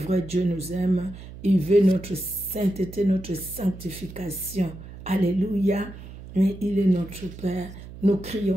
Dieu nous aime. Il veut notre sainteté, notre sanctification. Alléluia. Mais il est notre Père. Nous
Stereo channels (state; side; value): noise; right; hum, 14 dB below the sound